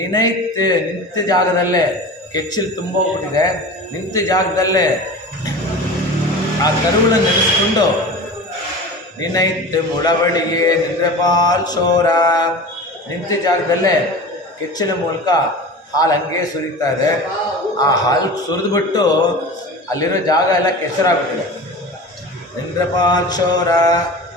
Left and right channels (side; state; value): both; normal; correlation 0.34